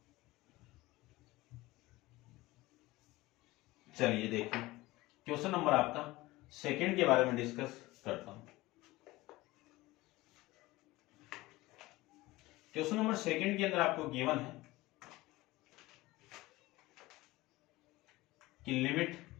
चलिए देखिए क्वेश्चन नंबर आपका सेकंड के बारे में डिस्कस करता हूं। क्वेश्चन नंबर सेकंड के अंदर आपको गिवन है कि limit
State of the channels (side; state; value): right; quieter; 19.5 dB